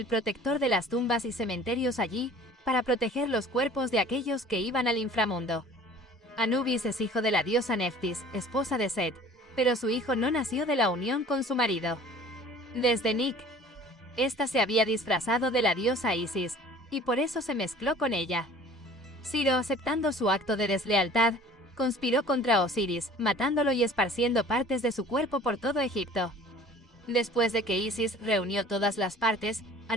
protector de las tumbas y cementerios allí, para proteger los cuerpos de aquellos que iban al inframundo. Anubis es hijo de la diosa Neftis, esposa de Set, pero su hijo no nació de la unión con su marido. Desde Nik, esta se había disfrazado de la diosa Isis, y por eso se mezcló con ella. Ciro, aceptando su acto de deslealtad, conspiró contra Osiris, matándolo y esparciendo partes de su cuerpo por todo Egipto. Después de que Isis reunió todas las partes,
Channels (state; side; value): normal; both; correlation 0.48